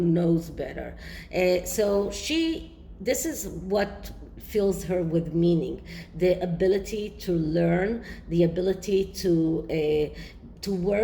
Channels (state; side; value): identical; both; correlation 1.00